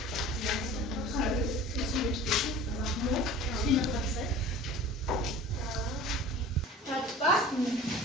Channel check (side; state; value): both; normal; correlation 0.41